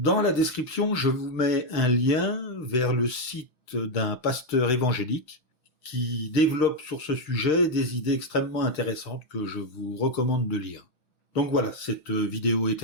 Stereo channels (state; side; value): late; right; 6.1 ms